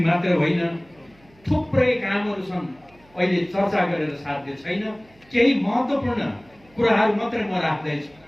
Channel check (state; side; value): noise; right; hum, 29 dB below the sound